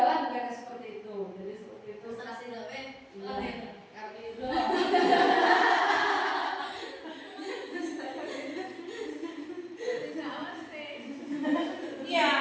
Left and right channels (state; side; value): identical; both; correlation 1.00